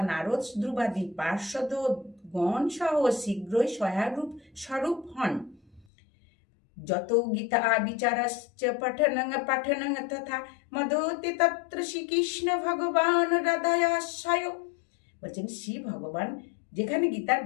নারদ, ধ্রুবাদি পার্শ্বদ গণ সহ শীঘ্রই সহায়রূপ স্বরূপ হন। যত গীতা বিচারশ্চ পঠনং তথা মদতে তত্র শ্রীকৃষ্ণ ভগবান হৃদয়াশ্রয়। বলছেন শ্রী ভগবান যেখানে গীতার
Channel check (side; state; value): right; drops out; at 5.9 s